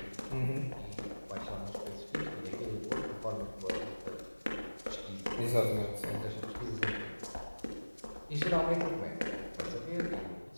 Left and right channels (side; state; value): both; inverted; correlation -1.00